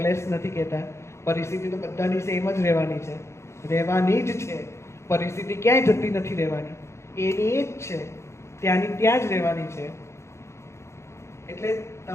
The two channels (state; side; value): late; right; 0.13 ms